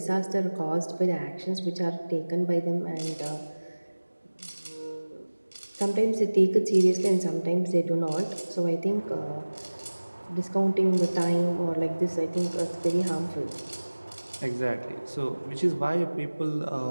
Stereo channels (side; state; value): both; inverted; correlation -1.00